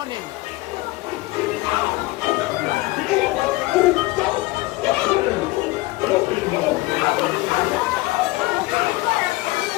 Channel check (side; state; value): right; quieter; 20.9 dB